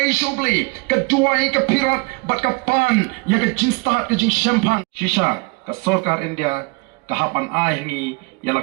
show play ka duai ka pirat bat ka pan ya ka jinstat ka jing champagne shisha ka sarkar India kahapan ahingi yala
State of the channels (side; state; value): left; quieter; 29.2 dB